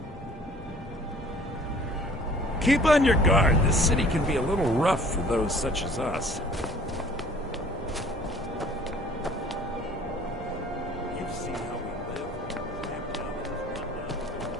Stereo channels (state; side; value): normal; both; correlation 0.52